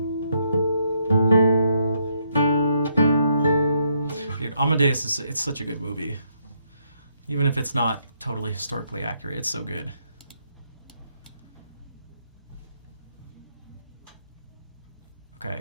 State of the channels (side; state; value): both; inverted; correlation -0.74